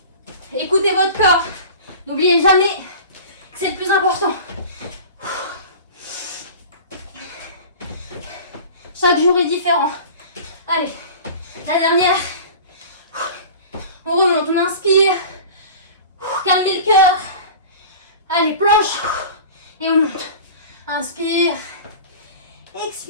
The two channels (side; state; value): both; inverted; correlation -0.37